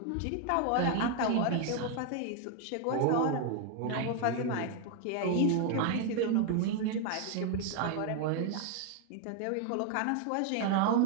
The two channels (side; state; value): both; different; correlation 0.00